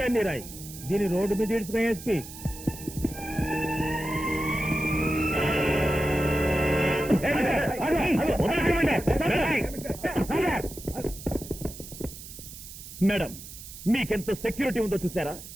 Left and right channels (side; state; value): right; noise; hiss, 14 dB below the sound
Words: అన్ని రాయి. దీని రోడ్డు మీద ఇడుచుకునే ఎస్పీ. మేడం, మీకెంత సెక్యూరిటీ ఉందో చూసారా?